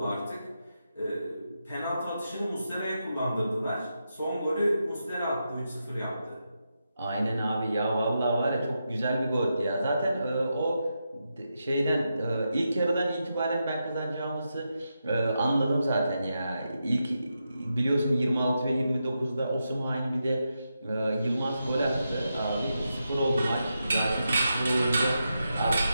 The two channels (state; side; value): inverted; both; correlation -0.86